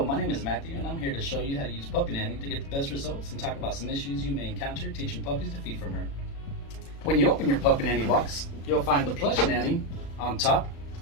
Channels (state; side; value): late; right; 36 ms